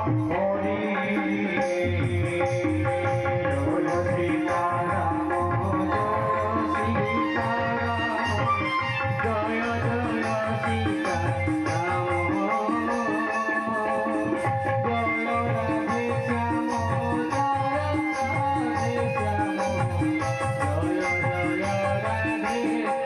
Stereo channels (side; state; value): both; identical; correlation 1.00